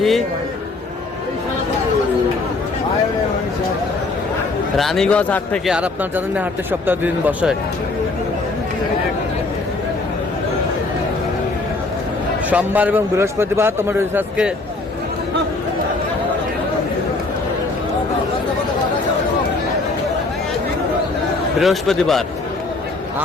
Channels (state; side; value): quieter; right; 3.4 dB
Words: রানীগঞ্জ হাট থেকে। আর আপনার জানেন না, হাটে সপ্তাহে 2 দিন বসে, সোমবার এবং বৃহস্পতিবার। তোমার আজকে বৃহস্পতিবার,